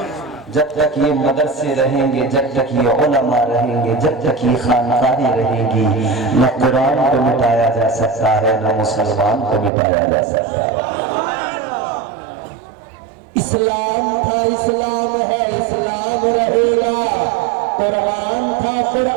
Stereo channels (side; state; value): left; drops out; at 9.7 s